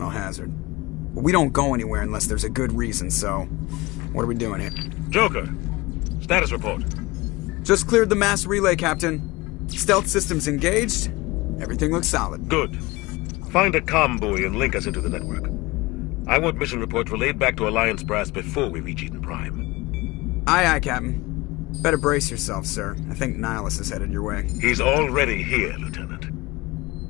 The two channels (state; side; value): quieter; right; 21.7 dB